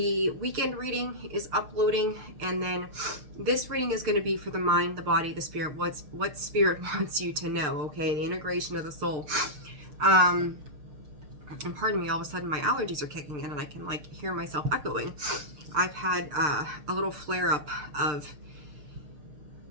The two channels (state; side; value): late; left; 6.7 ms